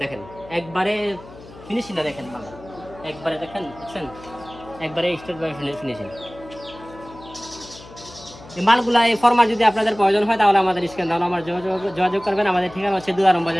দেখেন একবারে ফিনিশিংটা দেখেন মাল, একবারে দেখেন একবারে স্ট্রেট বাই ফিনিশিং। এই মালগুলা এই ফর্মার যদি আপনাদের প্রয়োজন হয় তাহলে আমাদের স্ক্রিন দাও আমার যোগাযোগ করবেন। আমাদের ঠিকানা হচ্ছে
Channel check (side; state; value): left; noise; hum, 19 dB below the sound